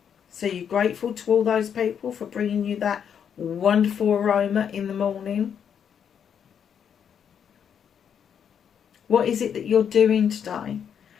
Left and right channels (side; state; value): right; quieter; 8.0 dB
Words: So you're grateful to all those people for bringing you that wonderful aroma in the morning. What is it that you're doing today?